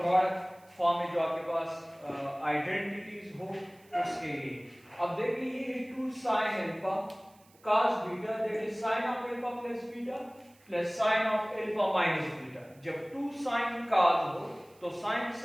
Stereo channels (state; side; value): noise; right; hiss, 29 dB below the sound